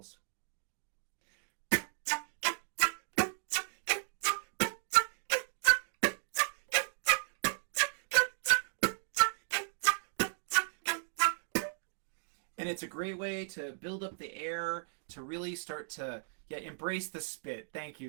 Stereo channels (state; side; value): silent; left; digital silence